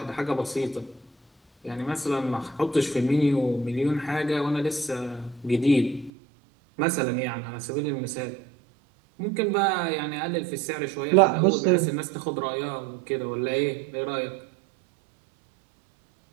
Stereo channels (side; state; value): left; drops out; at 6.1 s